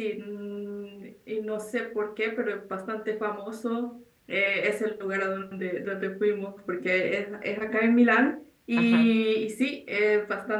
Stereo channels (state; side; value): identical; both; correlation 1.00